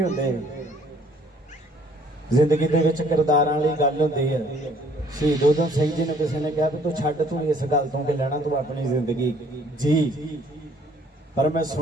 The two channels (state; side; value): normal; both; correlation 0.60